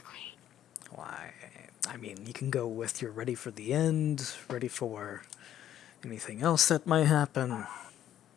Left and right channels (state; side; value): quieter; right; 11.3 dB